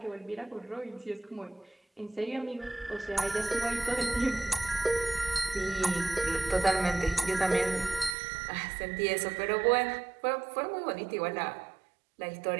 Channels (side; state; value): left; drops out; at 8.2 s